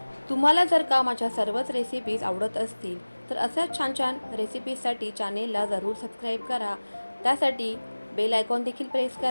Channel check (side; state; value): both; inverted; correlation -1.00